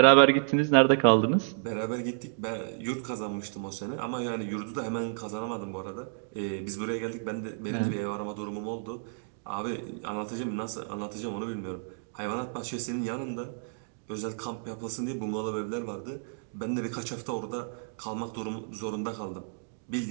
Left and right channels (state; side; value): silent; left; digital silence